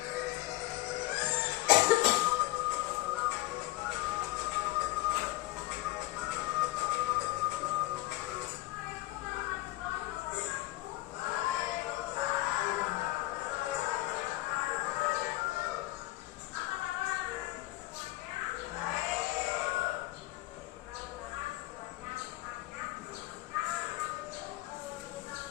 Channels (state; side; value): quieter; right; 18.2 dB